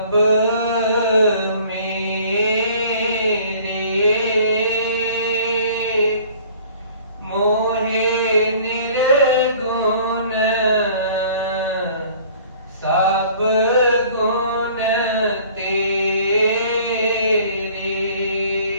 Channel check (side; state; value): both; inverted; correlation -0.51